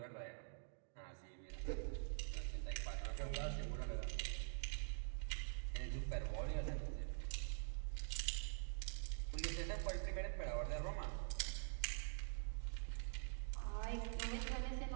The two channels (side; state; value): left; silent; digital silence